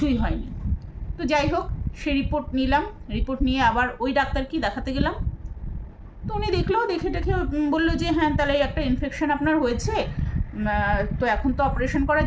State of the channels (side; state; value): both; identical; correlation 1.00